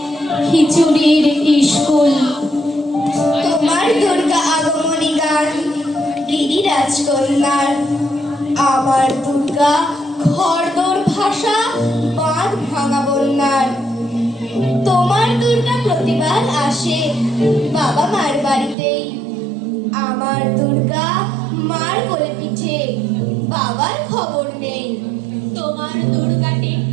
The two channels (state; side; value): drops out; left; at 18.8 s